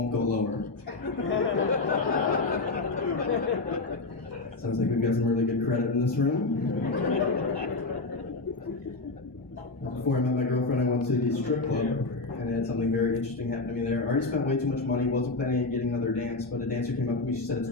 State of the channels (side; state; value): right; quieter; 3.4 dB